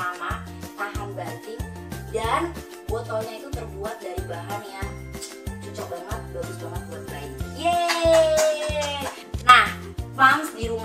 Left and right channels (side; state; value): both; identical; correlation 1.00